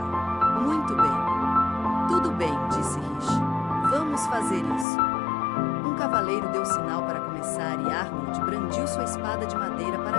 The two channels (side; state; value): right; drops out; at 4.9 s